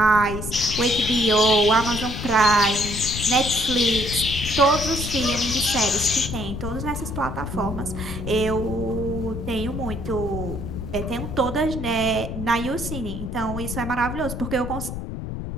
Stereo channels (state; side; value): noise; left; rumble, 6 dB below the sound